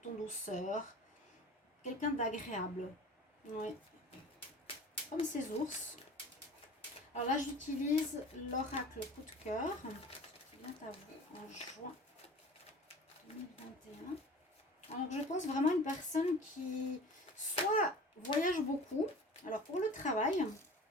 en douceur, quelqu'un d'agréable, oui, comme ces ours. Alors là, j'utilise l'oracle coup de cœur, qui vient à vous en juin 2021. Alors, je pense vraiment à une personne qui soit voyage beaucoup. Alors, pour le travail,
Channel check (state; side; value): normal; both; correlation 0.41